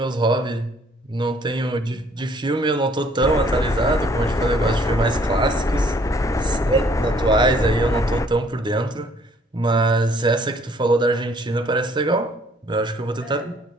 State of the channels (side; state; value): both; normal; correlation 0.61